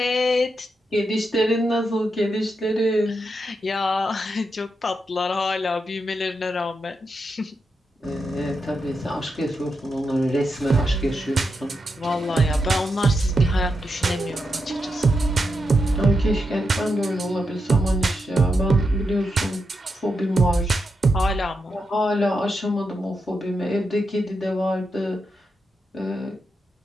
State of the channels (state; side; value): normal; both; correlation 0.85